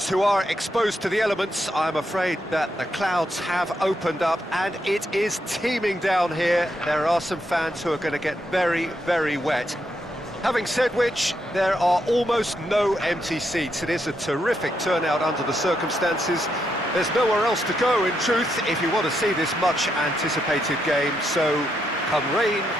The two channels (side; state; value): both; normal; correlation 0.80